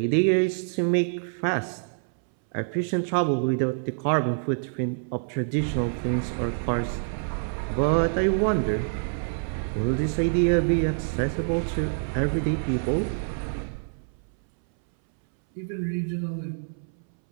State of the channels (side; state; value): left; silent; 61 dB below the other